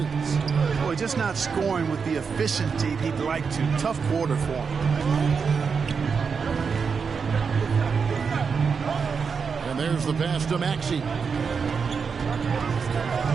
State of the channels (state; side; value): quieter; left; 5.7 dB